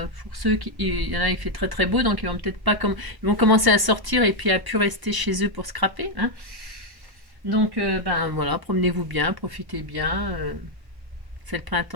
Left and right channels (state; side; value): late; left; 1.1 ms